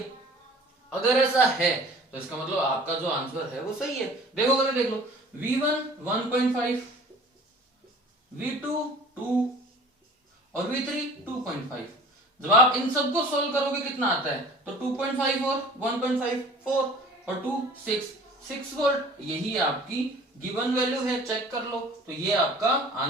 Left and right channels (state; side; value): normal; both; correlation 0.46